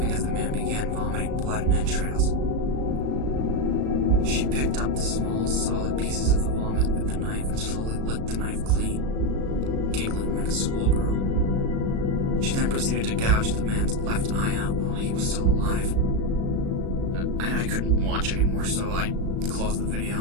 as the man began vomiting blood and entrails. She picked up the small, solid pieces of the vomit with the knife and slowly licked the knife clean, giggling like a schoolgirl. She then proceeded to gouge the man's left eye out while he was still alive. I couldn't watch anymore, so I closed the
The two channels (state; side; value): late; left; 36 ms